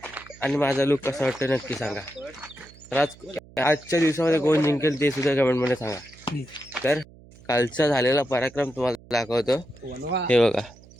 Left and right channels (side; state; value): right; noise; hum, 23 dB below the sound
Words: आणि माझा लुक कसा वाटतं नक्की सांगा. तर आजच्या दिवसामध्ये कोण जिंकेल ते सुद्धा कमेंटमध्ये सांगा. तर कालचा झालेला पराक्रम तुम्हाला दाखवतो. हे बघा,